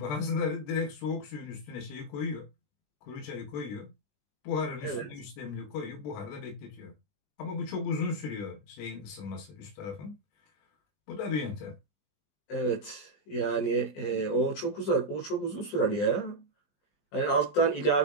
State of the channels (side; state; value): right; late; 20 ms